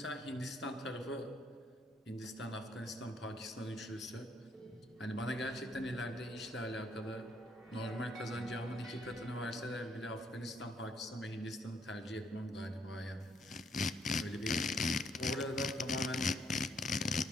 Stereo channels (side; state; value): both; normal; correlation 0.70